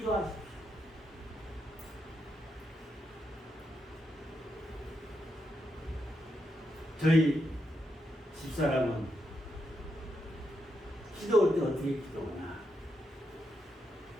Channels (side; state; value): both; normal; correlation 0.83